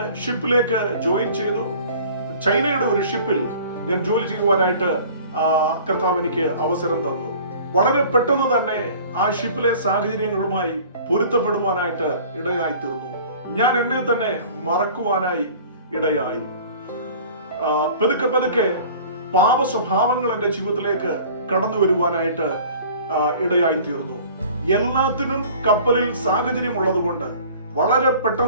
ഷിപ്പിലേക്ക് ജോയിൻ ചെയ്തു. ചൈനയുടെ ഒരു ഷിപ്പിൽ ഞാൻ ജോലി ചെയ്യുവാനായിട്ട് കർത്താവ് എനിക്ക് അവസരം തന്നു. വളരെ പെട്ടെന്ന് തന്നെ ആ ഷിപ്പിലെ സാഹചര്യങ്ങളുമായി പൊരുത്തപ്പെടുവാനായിട്ട് ഇടയായി തീർന്നു. ഞാൻ എന്നെ തന്നെ മറക്കുവാനായി ഇടയായി. പതുക്കെ പതുക്കെ പാപ സ്വഭാവങ്ങൾ എന്റെ ജീവിതത്തിലേക്ക് കടന്നു വരുവാനായിട്ട് ഇടയായി തീർന്നു. എല്ലാത്തിനും കപ്പലിൽ സാഹചര്യം ഉള്ളത് കൊണ്ട് വളരെ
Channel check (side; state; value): both; inverted; correlation -0.46